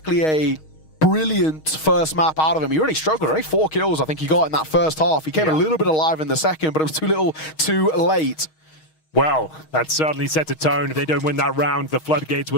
a brilliant first map out of him. He really struggled. Only 4 kills I think he got in that first half. He came a little bit alive in the second, but it was too little too late. Well, that certainly set a tone. If they don't win that round, the floodgates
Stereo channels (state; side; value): late; right; 6.4 ms